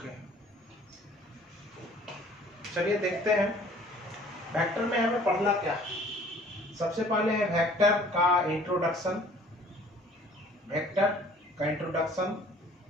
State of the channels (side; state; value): both; normal; correlation 0.53